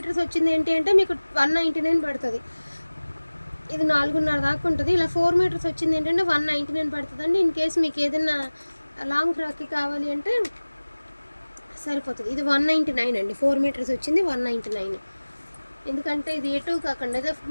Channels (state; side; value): inverted; both; correlation -1.00